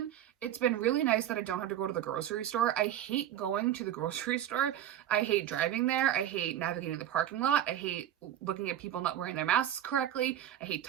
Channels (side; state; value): left; quieter; 11.4 dB